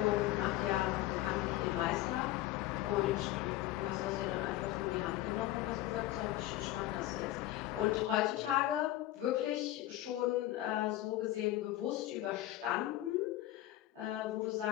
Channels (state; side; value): quieter; right; 15.4 dB